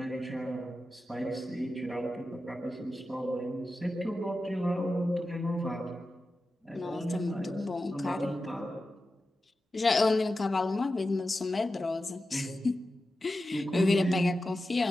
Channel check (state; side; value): normal; both; correlation 0.92